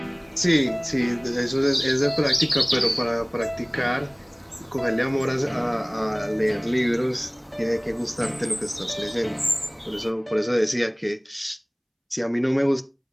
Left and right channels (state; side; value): identical; both; correlation 1.00